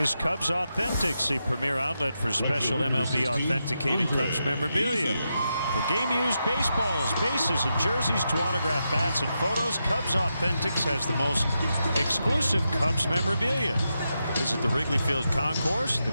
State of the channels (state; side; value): inverted; both; correlation -0.86